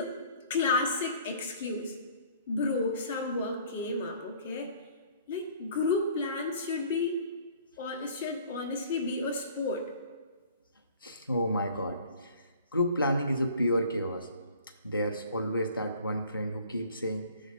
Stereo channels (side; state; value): both; inverted; correlation -0.52